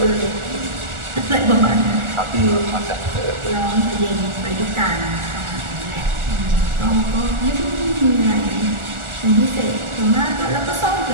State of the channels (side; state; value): left; late; 1.4 ms